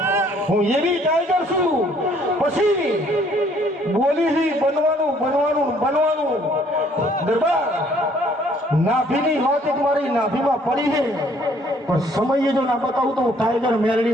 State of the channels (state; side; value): normal; both; correlation 0.62